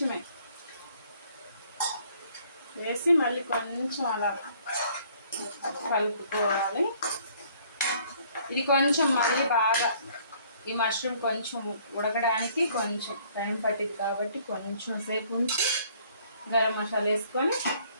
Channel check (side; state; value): both; inverted; correlation -0.60